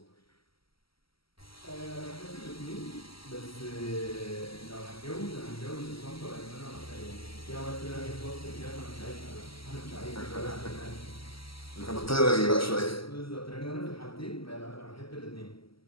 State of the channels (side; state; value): right; late; 0.75 ms